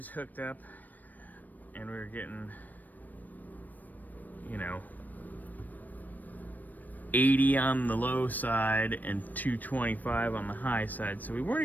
hooked up, and we were getting, you know, 80 on the low side and 225 on the high side. So we weren't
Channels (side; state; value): right; late; 0.085 ms